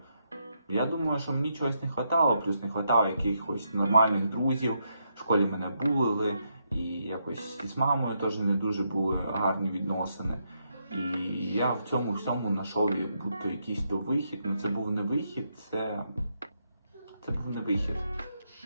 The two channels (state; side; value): inverted; both; correlation -0.80